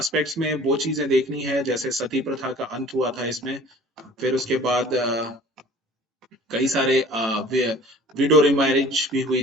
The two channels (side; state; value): both; normal; correlation 0.48